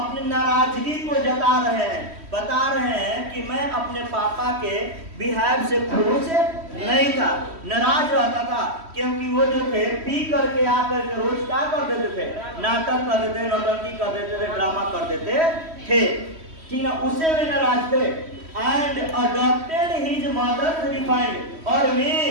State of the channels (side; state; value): left; late; 3.1 ms